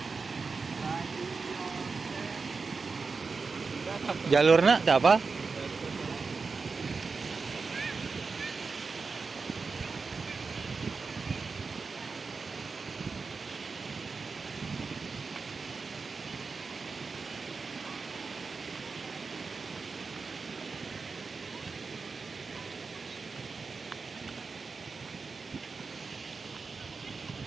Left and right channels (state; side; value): quieter; left; 4.6 dB